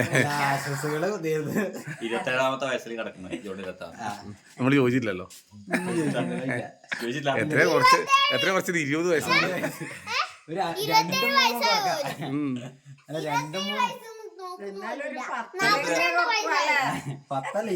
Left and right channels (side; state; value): both; identical; correlation 1.00